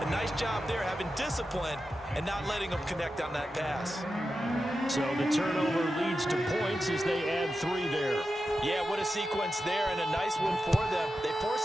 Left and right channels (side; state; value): both; normal; correlation 0.91